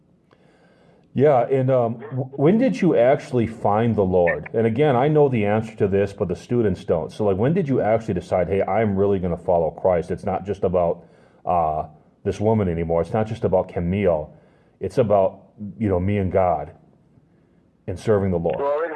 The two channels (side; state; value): both; identical; correlation 1.00